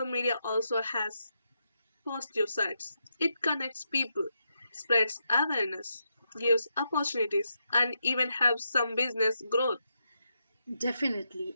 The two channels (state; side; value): inverted; both; correlation -0.83